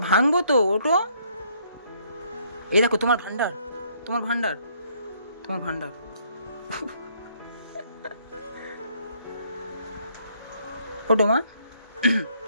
ভাঙবো তো, ওঠো। এই দেখো তোমার ভান্ডার ওঠো মা,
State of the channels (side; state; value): both; inverted; correlation -0.67